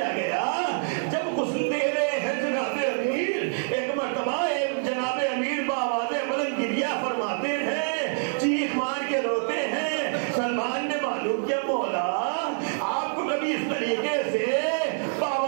گیا. جب غسل دے رہے ہیں جناب امیر ایک مرتبہ جناب امیر بآواز بلند گریہ فرماتے ہیں. چیخ مار کے روتے ہیں. سلمان نے معلوم کیا مولا آپ کو کبھی اس طریقے سے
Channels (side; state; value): left; silent; digital silence